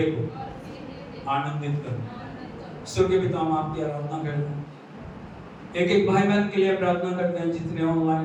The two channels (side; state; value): both; identical; correlation 1.00